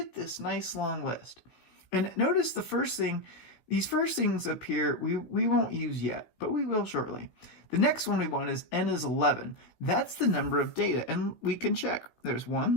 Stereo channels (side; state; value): right; late; 16 ms